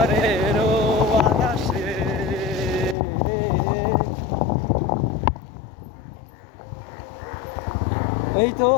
বাতাসে। এই তো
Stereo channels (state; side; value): drops out; right; at 3.0 s